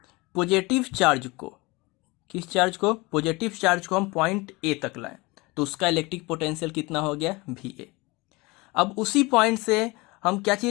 पॉजिटिव चार्ज को, किस चार्ज को, पॉजिटिव चार्ज को हम पॉइंट ए तक लाएं तो उसका इलेक्ट्रिक पोटेंशियल कितना हो गया, भी ए। अब उसी पॉइंट से हम क्या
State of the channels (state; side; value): quieter; right; 24.0 dB